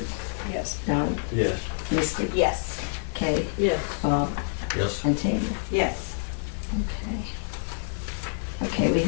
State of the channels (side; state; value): right; silent; 60 dB below the other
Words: Yes. Don, Yes. Misty, Yes. Kay, Yes. Bob, Yes. and Tanya. Yes. Okay. Okay, we